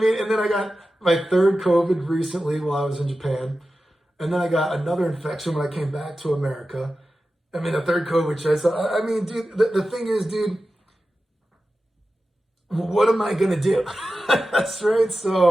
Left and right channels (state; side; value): normal; both; correlation 0.93